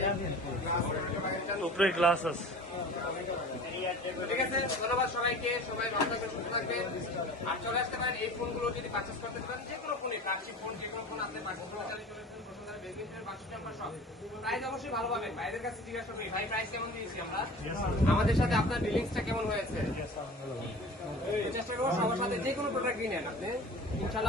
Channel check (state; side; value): normal; both; correlation 0.40